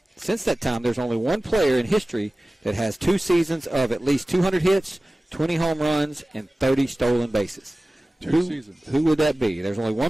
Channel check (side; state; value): both; normal; correlation 0.97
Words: Since that time, there's only one player in history that has 2 seasons of at least 200 hits, 20 home runs, and 30 stolen bases. Who would that be? There's only